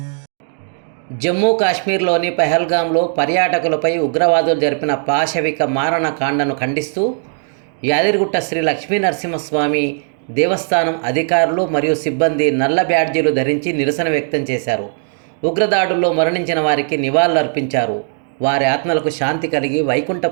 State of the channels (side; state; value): left; silent; 59 dB below the other